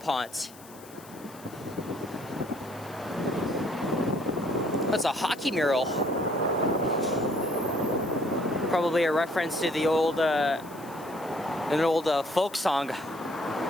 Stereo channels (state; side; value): noise; left; hiss, 21 dB below the sound